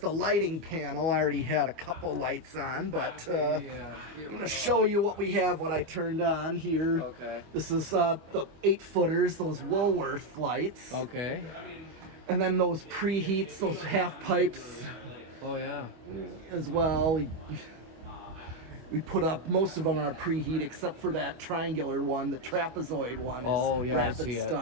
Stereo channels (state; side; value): late; left; 25 ms